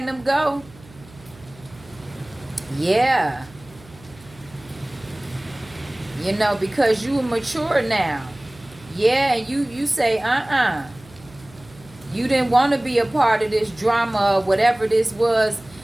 them go. Yeah. You know, because you are mature now. Yeah, you say, you didn't want to be a part of this drama or whatever this was,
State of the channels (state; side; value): noise; right; hum, 23 dB below the sound